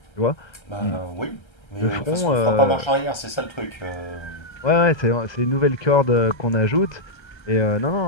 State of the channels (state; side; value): late; right; 1.3 ms